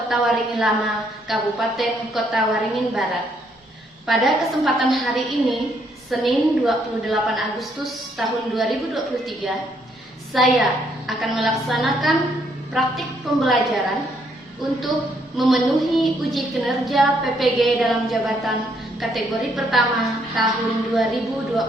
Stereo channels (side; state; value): both; normal; correlation 0.71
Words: Waringin Lama, Kabupaten Kota Waringin Barat. Pada kesempatan hari ini, Senin 28 Agustus tahun 2023, saya akan melaksanakan praktik pembelajaran untuk memenuhi uji kinerja PPG dalam jabatan kategori pertama tahun